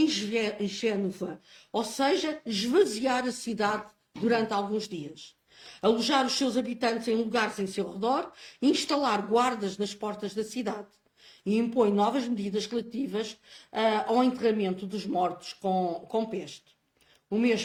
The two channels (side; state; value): both; identical; correlation 1.00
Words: Génova, ou seja, esvaziar a cidade durante alguns dias, alojar os seus habitantes em lugares em seu redor, instalar guardas nas portas da cidade e impõe novas medidas relativas ao enterramento dos mortos com peste. O